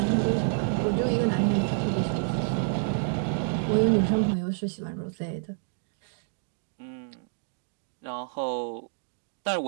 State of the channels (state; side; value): silent; left; digital silence